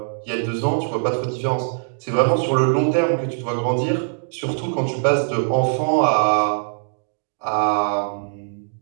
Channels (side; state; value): left; silent; digital silence